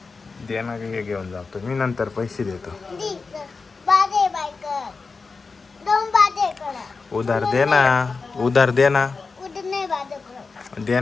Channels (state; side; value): quieter; right; 4.4 dB